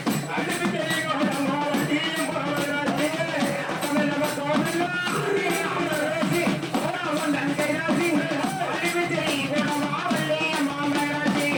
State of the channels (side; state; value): both; identical; correlation 1.00